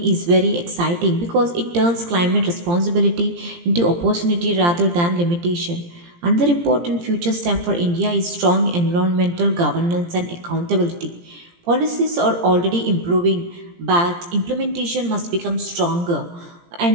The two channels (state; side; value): late; left; 17 ms